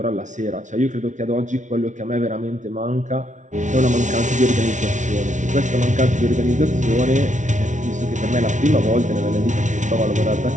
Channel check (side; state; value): left; late; 0.36 ms